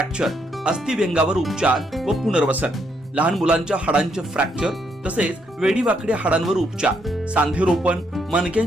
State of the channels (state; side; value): normal; both; correlation 0.75